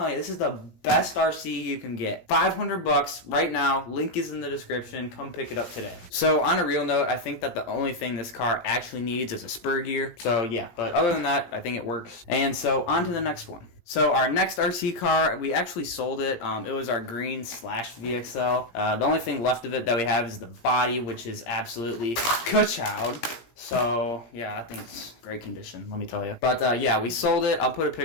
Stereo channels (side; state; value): right; late; 17 ms